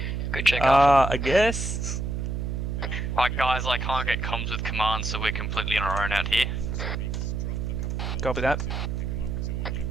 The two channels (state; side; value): noise; right; hum, 2 dB below the sound